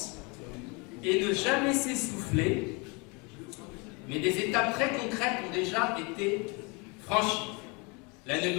et ne jamais s'essouffler, mais des étapes très concrètes ont déjà été franchies. La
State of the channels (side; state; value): right; quieter; 29.9 dB